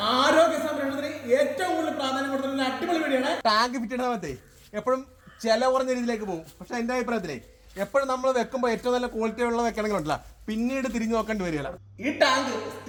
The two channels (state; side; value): identical; both; correlation 1.00